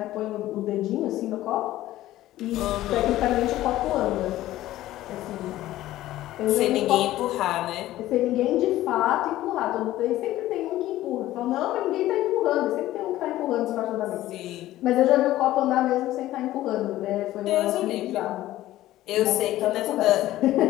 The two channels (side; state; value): right; quieter; 15.0 dB